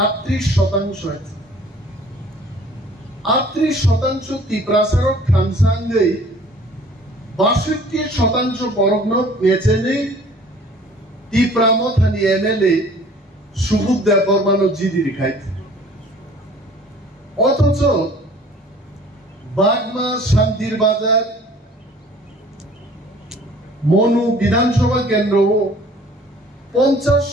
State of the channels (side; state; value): both; normal; correlation 0.51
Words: আছে 38% তিপ্রাসারক থামসাঙ্গই 62% বরগ্ন মেচেনি তিপ্রামথানি এমএলএ সুবুদ দেববর্মানো জিদি রিখাইত অথচ বাগমা শান্তির বাজার মনু বিধানসভা কেন্দ্রও